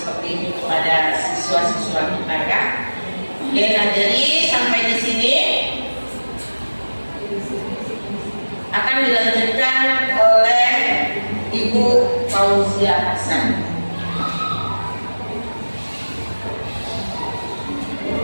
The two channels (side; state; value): both; inverted; correlation -1.00